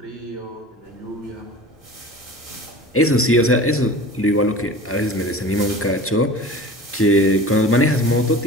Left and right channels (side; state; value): both; normal; correlation 0.38